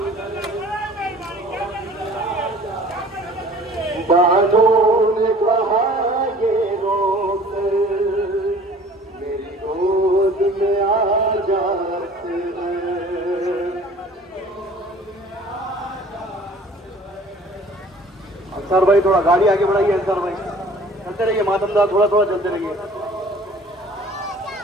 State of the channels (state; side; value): normal; both; correlation 0.49